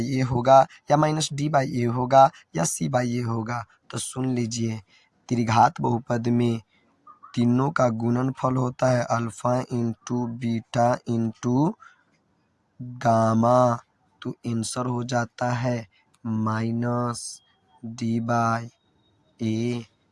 ए होगा, या माइनस डी बाई ए होगा, या सी बाई ए होगा। तो सुन लीजिए, त्रिघात बहुपद में तीनों का गुणनफल होता है alpha into beta into gamma, तो आंसर हो जाता है minus D by A.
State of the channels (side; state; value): both; identical; correlation 1.00